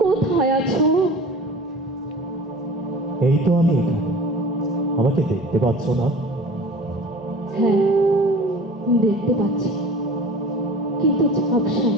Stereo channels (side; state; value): both; normal; correlation 0.41